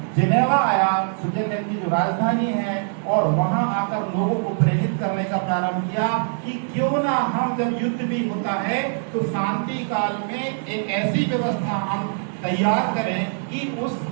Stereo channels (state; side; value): silent; left; 61 dB below the other